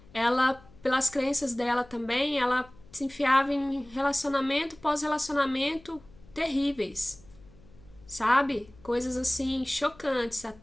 ela, pelas crenças dela também, ela se enfiava em relacionamento pós-relacionamento terríveis, sabe? Coisas assim, chocantes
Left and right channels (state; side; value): noise; left; hum, 25 dB below the sound